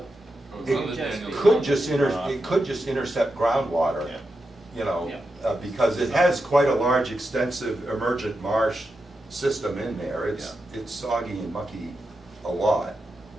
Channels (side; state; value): both; normal; correlation 0.88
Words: Goes It under just Daniel's be- Could Road. just it could just intercept groundwater, Yeah. you know, Yeah. because it has quite a large, extensive emergent marsh system in there. It's soggy and mucky a lot.